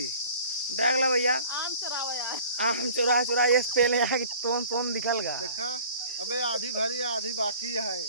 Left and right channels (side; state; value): both; inverted; correlation -0.47